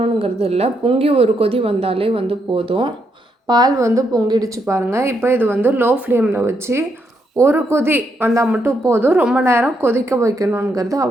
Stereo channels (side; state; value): both; normal; correlation 0.78